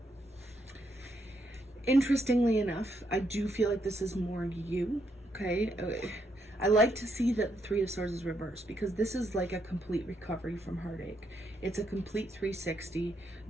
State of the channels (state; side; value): normal; both; correlation 0.77